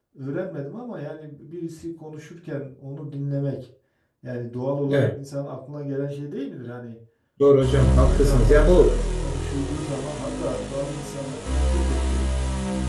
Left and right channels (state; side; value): identical; both; correlation 1.00